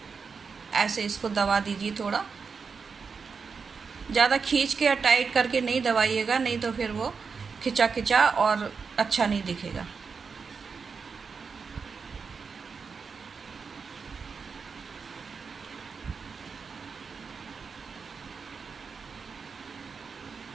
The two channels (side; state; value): left; quieter; 5.4 dB